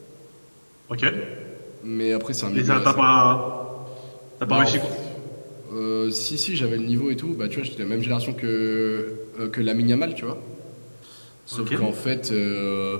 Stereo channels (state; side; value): inverted; both; correlation -1.00